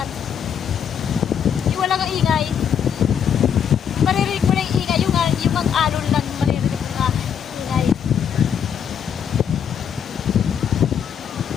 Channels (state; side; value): quieter; right; 8.0 dB